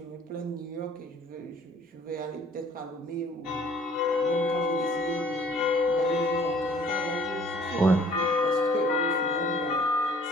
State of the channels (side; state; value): both; normal; correlation 0.55